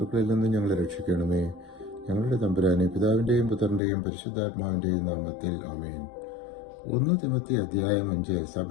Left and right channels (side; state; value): right; drops out; at 3.8 s